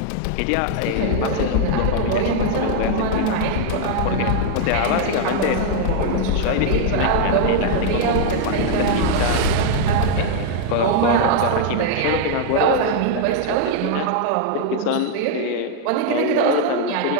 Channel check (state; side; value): different; both; correlation 0.00